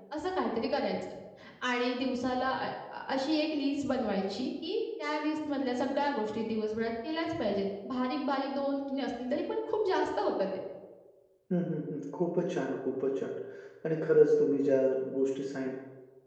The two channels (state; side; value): identical; both; correlation 1.00